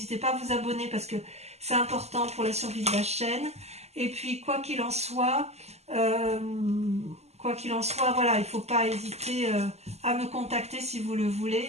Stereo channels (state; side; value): late; left; 0.31 ms